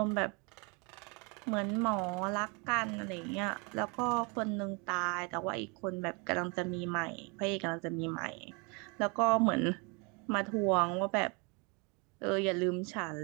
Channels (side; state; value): left; quieter; 31.6 dB